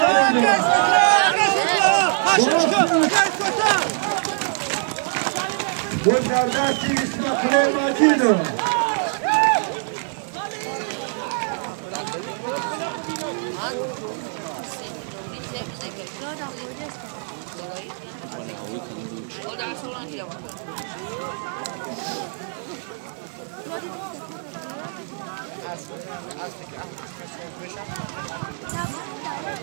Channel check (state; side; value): silent; left; digital silence